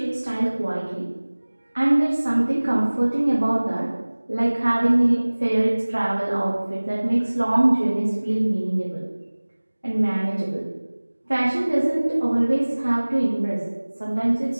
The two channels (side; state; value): both; inverted; correlation -1.00